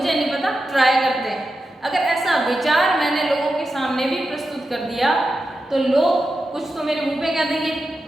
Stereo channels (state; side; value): normal; both; correlation 0.90